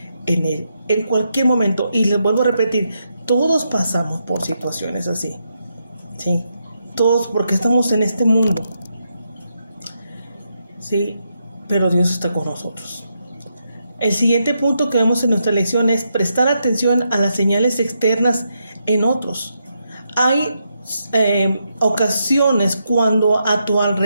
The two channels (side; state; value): both; inverted; correlation -0.82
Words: en Él en cualquier momento. Y les vuelvo a repetir, todos pasamos por situaciones así, ¿sí? Todos, porque estamos en este mundo, ¿sí? Pero Dios está con nosotros. El siguiente punto que vemos en nuestra lección es prestar atención a las señales externas en otros. Hay ocasiones cuando a tu